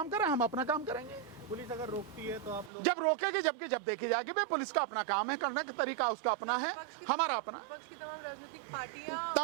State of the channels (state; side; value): drops out; left; at 2.7 s